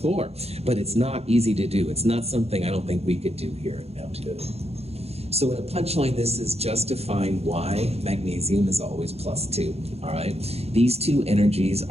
but it's not easy to do. It's not something I don't think we could do here at Mount Hood. So in a punchline, this is just to find why magnesium is always +2, all right? These two energies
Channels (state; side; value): late; left; 0.30 ms